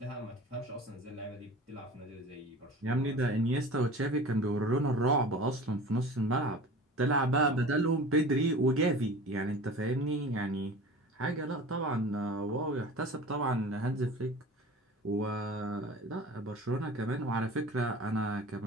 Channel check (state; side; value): normal; both; correlation 0.38